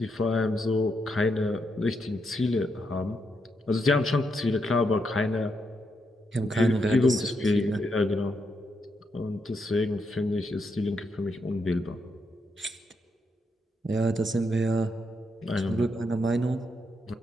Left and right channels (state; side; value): normal; both; correlation 0.80